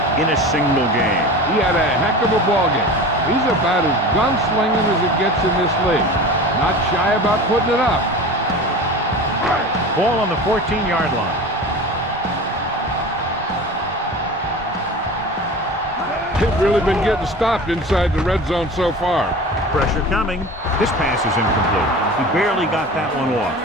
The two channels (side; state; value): both; normal; correlation 0.35